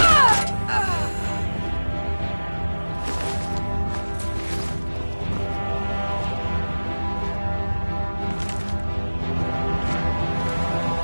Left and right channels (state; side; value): inverted; both; correlation -1.00